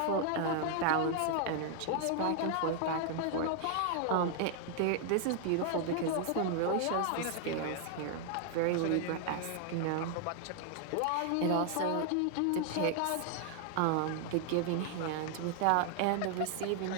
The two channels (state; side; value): different; both; correlation 0.00